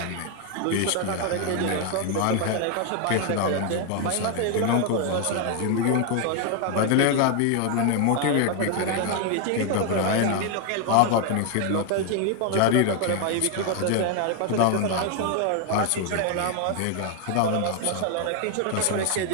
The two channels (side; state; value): both; different; correlation 0.01